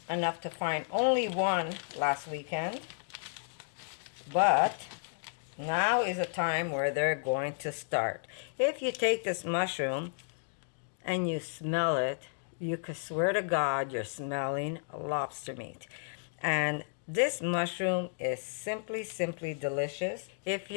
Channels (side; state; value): right; silent; digital silence